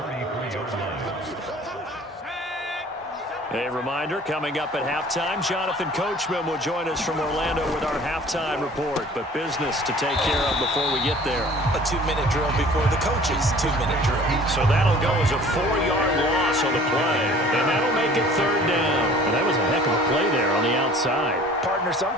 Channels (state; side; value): normal; both; correlation 0.49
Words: A reminder, coming up at halftime, Jonathan Coachman will join us from Orlando with our halftime report. But business to take care of before we get there. A 2-minute drill before the coach's 2-minute drill. So that'll go as a 4-yard loss on the play. And that'll make it 3rd down. And that was a heck of a play there on the outside. Partner,